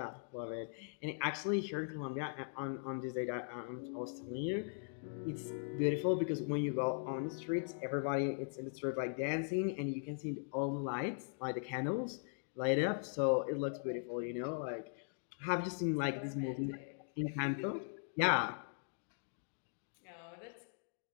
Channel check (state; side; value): silent; right; digital silence